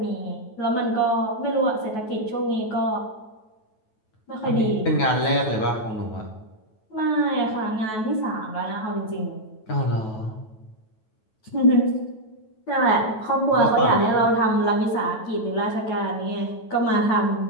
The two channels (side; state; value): right; late; 9.3 ms